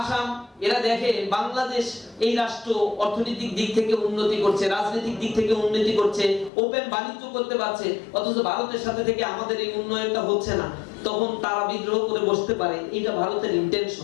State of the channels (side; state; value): right; drops out; at 6.5 s